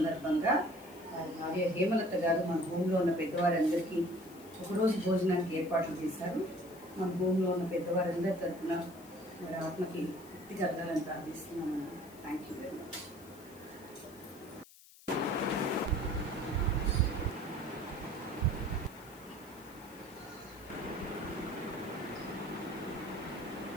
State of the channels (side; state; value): left; noise; hiss, 22 dB below the sound